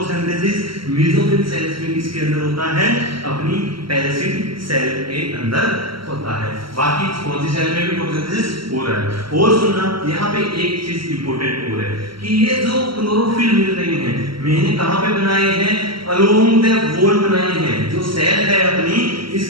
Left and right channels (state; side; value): late; left; 0.74 ms